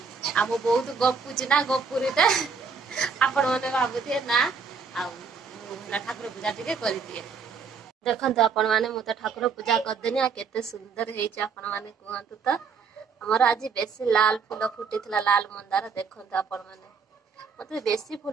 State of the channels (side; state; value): left; quieter; 5.5 dB